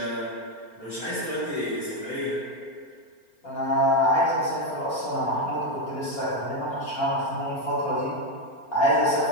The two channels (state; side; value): late; right; 4.4 ms